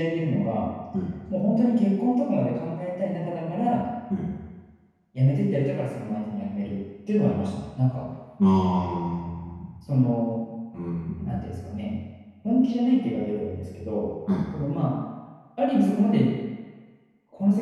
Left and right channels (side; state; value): both; identical; correlation 1.00